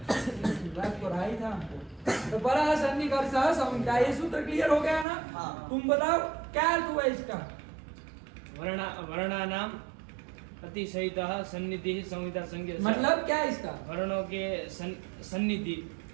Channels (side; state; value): left; drops out; at 5.1 s